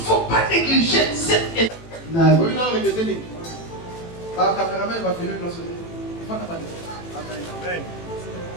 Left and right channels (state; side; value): late; right; 18 ms